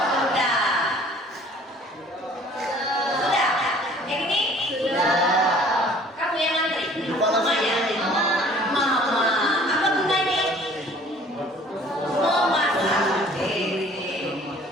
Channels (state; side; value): normal; both; correlation 0.53